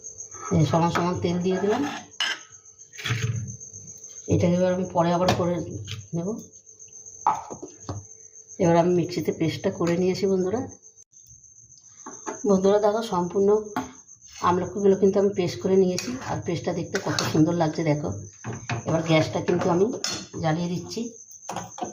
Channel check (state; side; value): identical; both; correlation 1.00